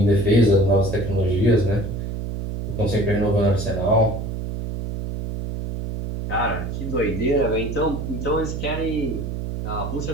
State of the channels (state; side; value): noise; right; hum, 5 dB below the sound